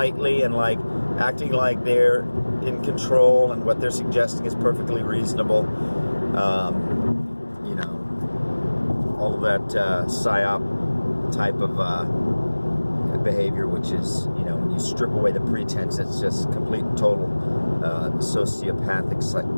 and like acting like they're in control and what they're suggesting is perfectly reasonable. All of that psyop type of behavior, which is, when you strip away the pretense, it's just complete and total sociopathic,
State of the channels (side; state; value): both; inverted; correlation -1.00